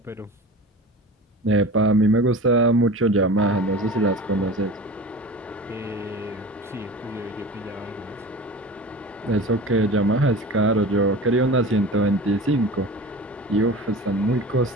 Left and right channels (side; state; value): both; normal; correlation 0.35